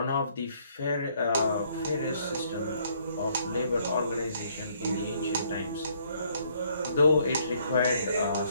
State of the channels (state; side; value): inverted; both; correlation -0.66